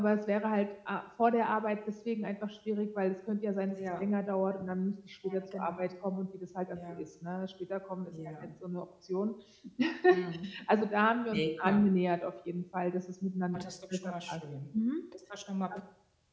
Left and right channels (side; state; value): both; identical; correlation 1.00